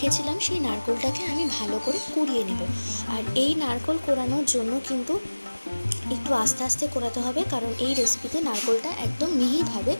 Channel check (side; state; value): both; inverted; correlation -1.00